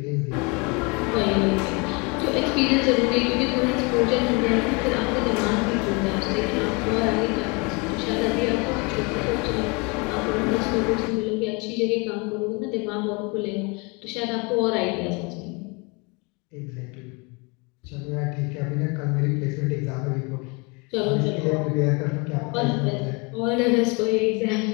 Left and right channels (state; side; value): quieter; right; 29.2 dB